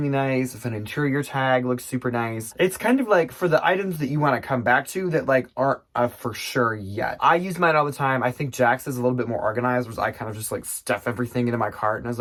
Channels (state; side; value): identical; both; correlation 1.00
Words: nice, if an interior tag looks super nice. It's kind of like for the items that you want to come back to that like aren't for sure yet. I use mine all the time. I think Jax is a little bit more organized, whereas I kind of just like stuff everything into my cart. And as